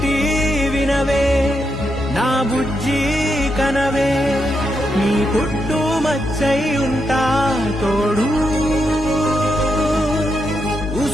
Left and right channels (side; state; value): both; normal; correlation 0.82